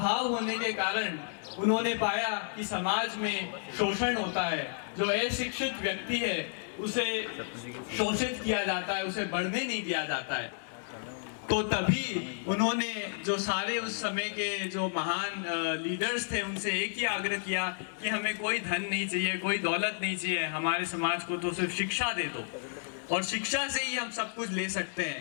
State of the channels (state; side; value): silent; right; digital silence